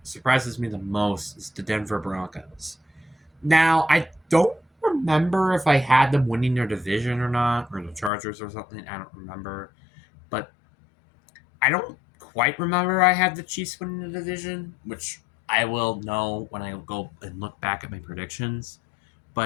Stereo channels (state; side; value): drops out; right; at 8.1 s